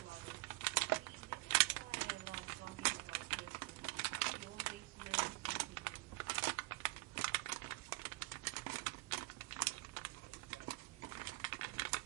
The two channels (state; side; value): quieter; left; 23.5 dB